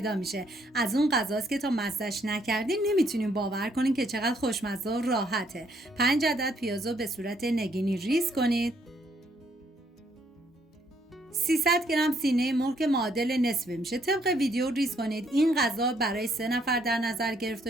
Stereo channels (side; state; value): both; normal; correlation 0.70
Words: میشه. از اون غذاست که تا مزه‌اش نکردین نمیتونین باور کنین که چقدر خوشمزه و راحته. 5 عدد پیازو به صورت نگینی ریز کنید. 300 گرم سینه مرغ که معادل نصفه میشه طبق ویدیو ریز کنید. این غذا برای 3 نفر در نظر